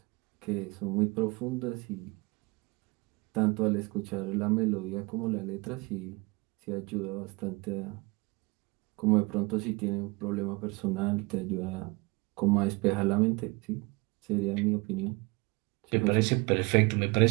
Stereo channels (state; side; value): quieter; left; 26.4 dB